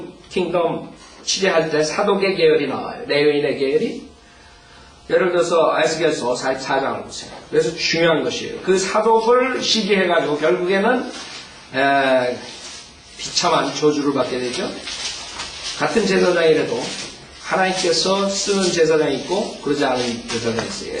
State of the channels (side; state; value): both; identical; correlation 1.00